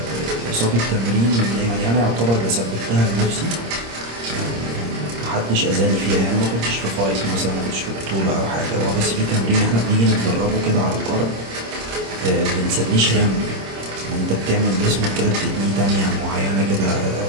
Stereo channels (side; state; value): left; late; 26 ms